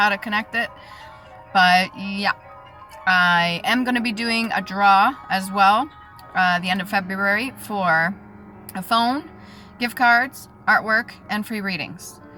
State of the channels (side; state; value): both; identical; correlation 1.00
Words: to connect it, but yeah. I am going to be doing a draw as well, the end of February, for a phone, gift cards, artwork, and free readings.